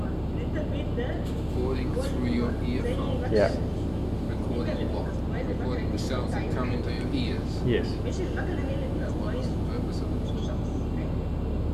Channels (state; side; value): identical; both; correlation 1.00